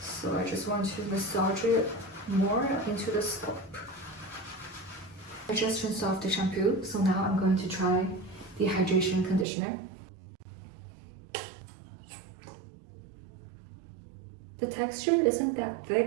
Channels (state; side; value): drops out; left; at 9.5 s